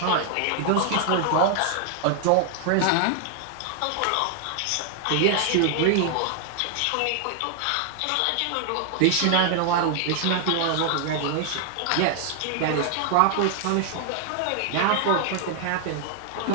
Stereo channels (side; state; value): both; different; correlation 0.00